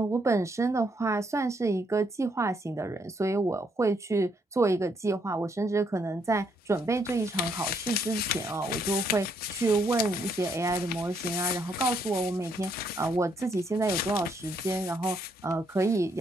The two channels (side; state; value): both; normal; correlation 0.73